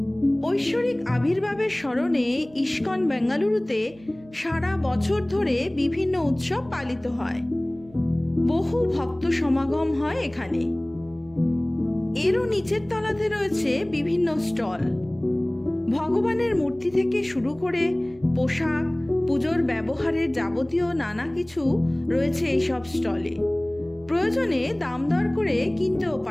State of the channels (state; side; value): noise; right; hum, 24 dB below the sound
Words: ঐশ্বরিক আবির্ভাবের স্মরণে ইস্কন বেঙ্গালুরুতে সারা বছর ধরে বিভিন্ন উৎসব পালিত হয়। বহু ভক্ত সমাগম হয় এখানে। এরও নিচের তলাতে রয়েছে বিভিন্ন স্টল। ভগবানের মূর্তি থেকে শুরু করে পোশাক, পুজোর ব্যবহারের যাবতীয় নানা কিছু রয়েছে এইসব স্টলে। প্রয়োজনে দাম দর করে কিনতেও